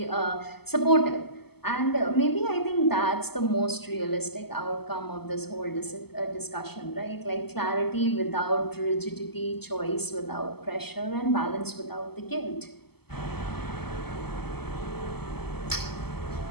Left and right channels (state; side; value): late; right; 0.96 ms